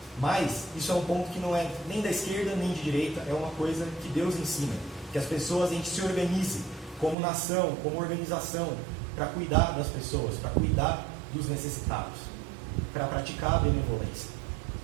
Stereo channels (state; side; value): drops out; left; at 7.2 s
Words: Mas isso é um ponto que não é nem da esquerda nem de direita, é uma coisa que Deus ensina, que as pessoas, a gente se organize como nação, como organização, para cuidar das pessoas, para cuidar dos necessitados, para praticar a benevolência.